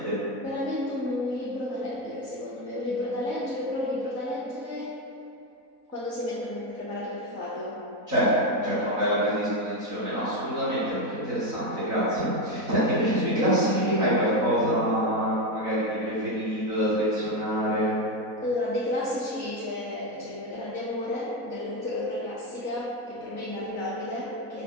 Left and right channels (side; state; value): left; late; 4.0 ms